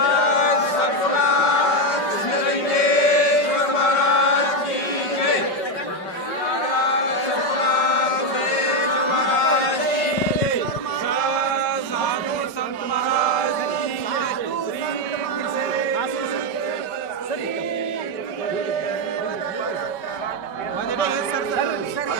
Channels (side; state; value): right; late; 5.2 ms